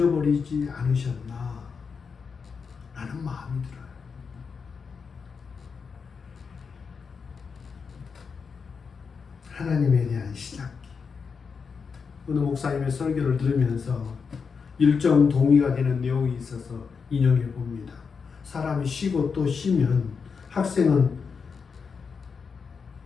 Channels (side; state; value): right; quieter; 5.6 dB